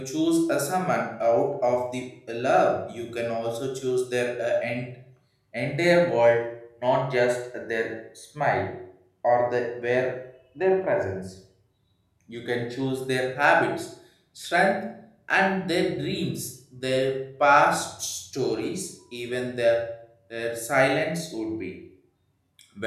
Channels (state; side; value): identical; both; correlation 1.00